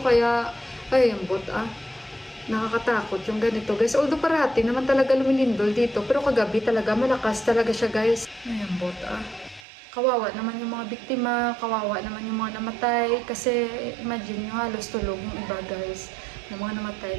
Kaya, ay, ambot nakakatakot yung ganito guys. Although parati naman talaga lumilindol dito, pero kagabi talaga malakas talaga siya guys. Ayan kawawa naman yung mga biktima, kawawa naman yung mga namatay, kasi imagine yung halos tulog yung iba guys ng mga namatay,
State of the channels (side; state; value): left; drops out; at 9.7 s